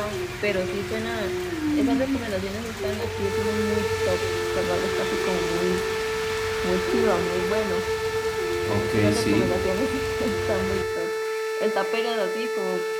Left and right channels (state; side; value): identical; both; correlation 1.00